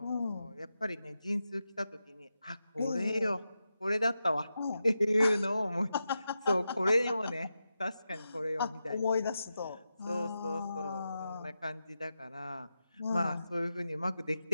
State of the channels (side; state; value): both; inverted; correlation -0.90